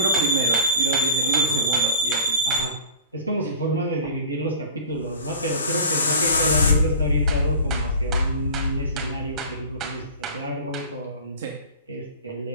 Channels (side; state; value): both; inverted; correlation -0.39